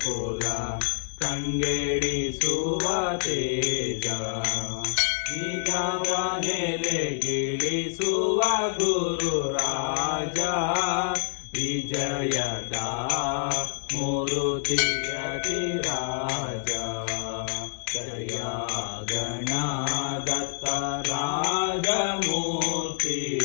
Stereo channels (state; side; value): silent; right; digital silence